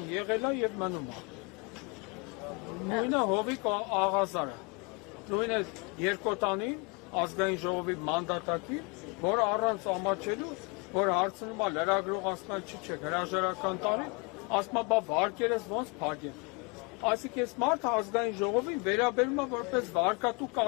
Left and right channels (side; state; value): right; quieter; 31.7 dB